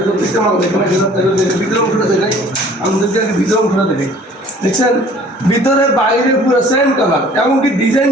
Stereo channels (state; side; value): normal; both; correlation 0.52